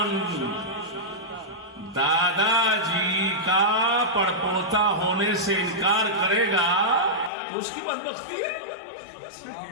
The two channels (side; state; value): right; drops out; at 7.3 s